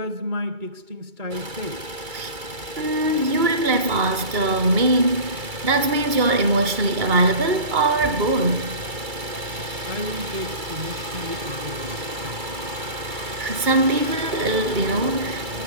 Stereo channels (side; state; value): left; late; 2.2 ms